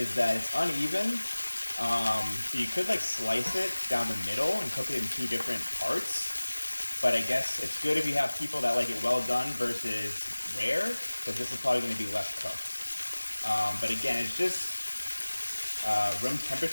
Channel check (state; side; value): inverted; both; correlation -1.00